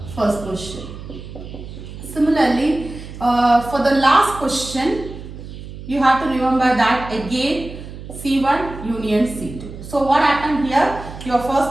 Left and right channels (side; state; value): right; noise; hum, 12 dB below the sound